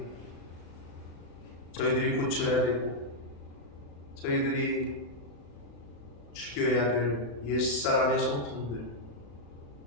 저희들이 고쳐야 되고 저희들이 죽여야 될 옛사람의 성품들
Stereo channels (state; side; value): late; right; 35 ms